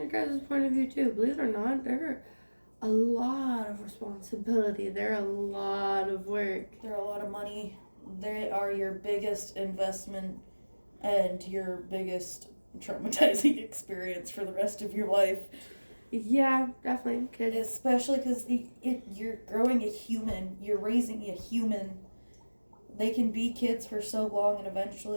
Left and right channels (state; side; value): inverted; both; correlation -1.00